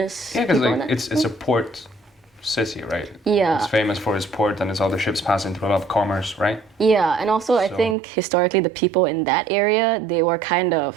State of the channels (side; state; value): left; drops out; at 8.0 s